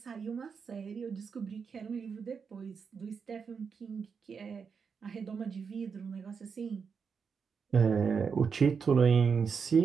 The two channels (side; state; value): left; quieter; 5.9 dB